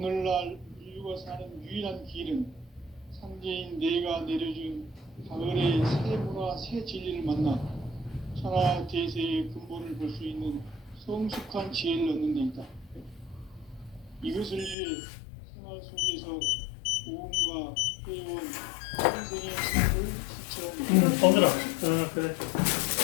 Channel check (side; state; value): right; drops out; at 14.8 s